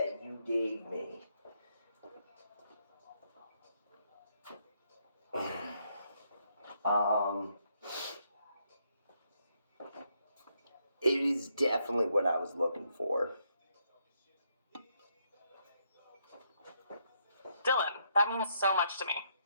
you gave me. It is definitely what I was looking for. Dylan, that means so much to me.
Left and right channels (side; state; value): both; inverted; correlation -0.75